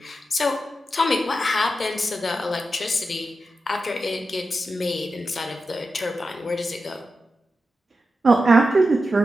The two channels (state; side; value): normal; both; correlation 0.90